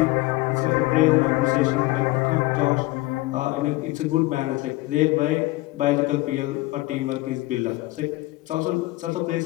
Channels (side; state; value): right; quieter; 19.7 dB